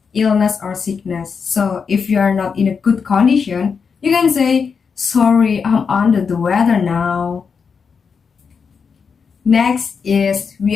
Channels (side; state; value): right; quieter; 5.8 dB